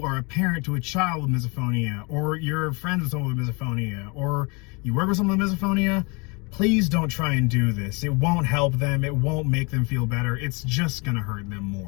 are a parent to a child with misophonia, or you're friends with someone with misophonia, or you work with someone with misophonia, please don't try and do this. It won't help them. It won't make them feel better. It's just going to hurt them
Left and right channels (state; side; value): quieter; right; 29.8 dB